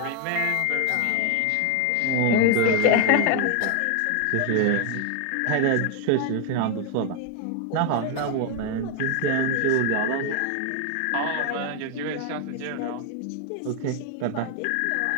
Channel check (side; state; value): both; different; correlation 0.00